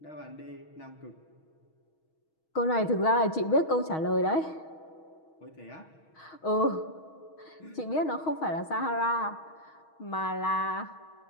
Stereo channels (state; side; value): late; right; 6.3 ms